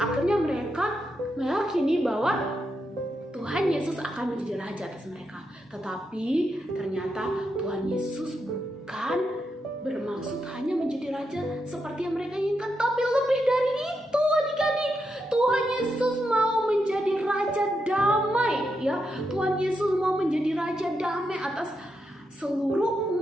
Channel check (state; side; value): normal; both; correlation 0.84